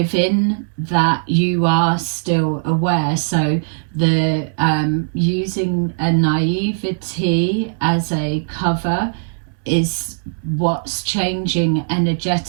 that, you are still aware. So the using a naivety as a cover is what's changing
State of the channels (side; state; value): left; silent; 67 dB below the other